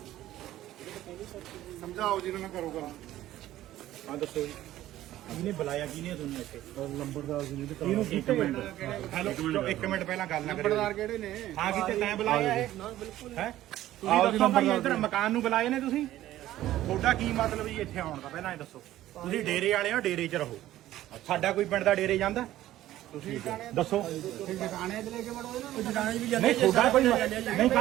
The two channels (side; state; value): left; quieter; 14.1 dB